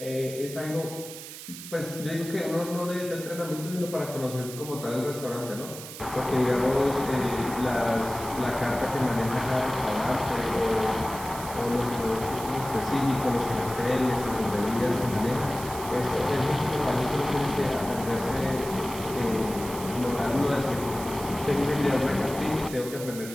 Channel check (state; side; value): noise; right; hiss, 12 dB below the sound